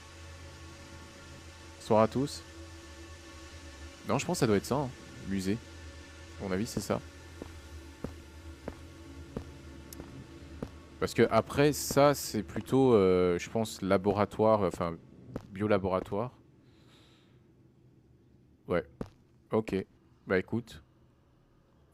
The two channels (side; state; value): both; identical; correlation 1.00